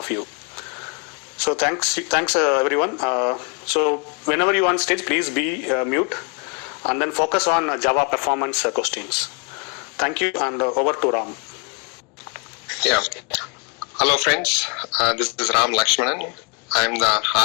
you. So thanks everyone. So whenever you are on stage, please be mute and then focus on Java performance questions. Thank you, and over to Ram. Yeah. Hello friends, this is Ram Lakshmanan. I'm the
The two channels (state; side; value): quieter; right; 34.3 dB